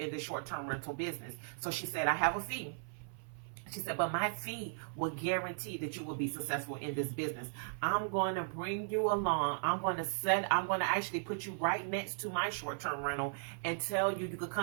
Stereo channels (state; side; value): silent; left; 53 dB below the other